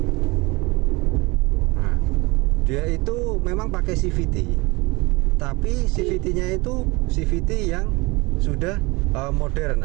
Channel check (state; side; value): quieter; left; 24.6 dB